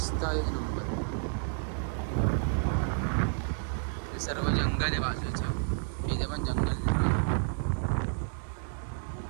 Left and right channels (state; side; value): silent; left; digital silence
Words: एक नंबर. हे सर्व जंगल आहे बाजूचं. इथे पण जंगल आहे.